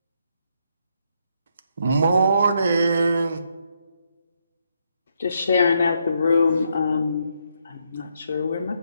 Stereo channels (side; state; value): both; inverted; correlation -0.76